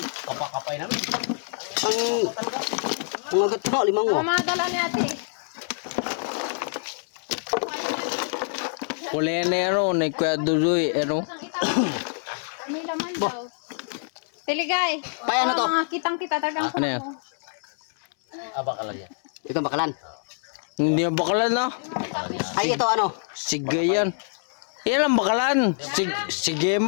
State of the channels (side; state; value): right; silent; 59 dB below the other